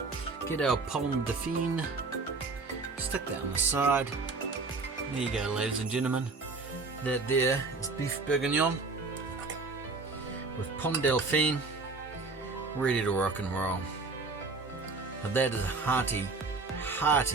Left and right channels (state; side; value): quieter; left; 3.9 dB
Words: Get our Pommes Dauphine. Stick that on the side. There you go, ladies and gentlemen. That there is Beef Bourguignon with Pommes Dauphine, ready to rock and roll. Now that is a hearty,